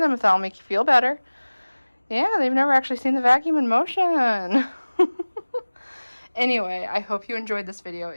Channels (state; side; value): inverted; both; correlation -1.00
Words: if that'll make you feel better. Yeah, they've never actually seen the vacuum in motion. Anyway, I hope you enjoyed this video.